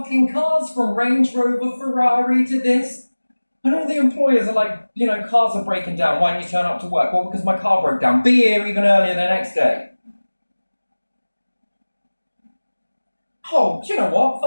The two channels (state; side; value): inverted; both; correlation -1.00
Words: cars, from Range Rover, Ferrari to this. And all the employers are like, you know, cars are breaking down. Why didn't you turn up to work? Well, because my car broke down. Be here even earlier the next day. Oh, do you know what?